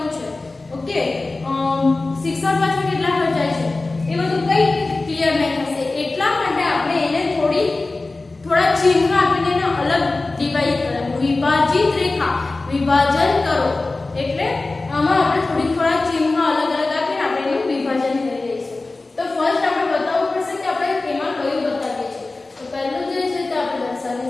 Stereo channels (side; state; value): right; quieter; 3.3 dB